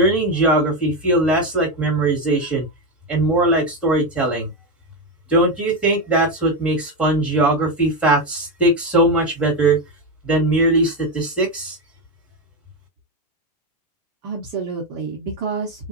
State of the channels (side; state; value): both; normal; correlation 0.11